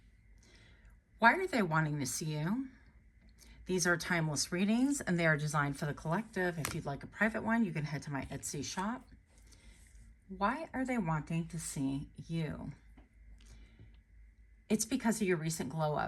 Why are they wanting to see you? These are timeless readings, and they are designed for the collective. If you'd like a private one, you can head to my Etsy shop. Why are they wanting to see you? It's because of your recent glow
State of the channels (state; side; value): identical; both; correlation 1.00